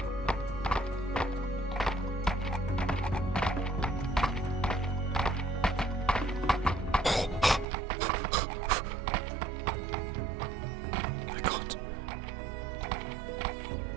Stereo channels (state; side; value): drops out; left; at 7.7 s